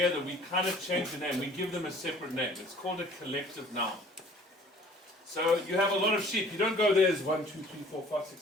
we kind of change the name. We give them a separate name. It's called a collective noun. So you have a lot of sheep. You don't go, there's 1, 2, 3, 4, 5, 6,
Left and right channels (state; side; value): normal; both; correlation 0.52